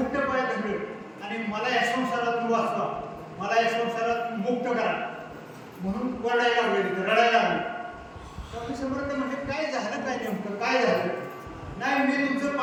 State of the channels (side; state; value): both; identical; correlation 1.00